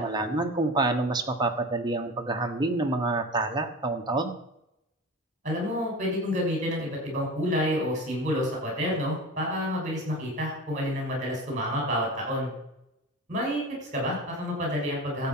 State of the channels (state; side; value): normal; both; correlation 0.31